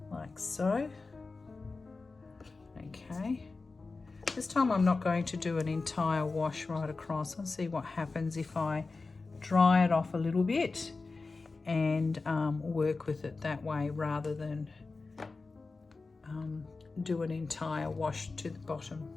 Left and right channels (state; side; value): quieter; right; 3.9 dB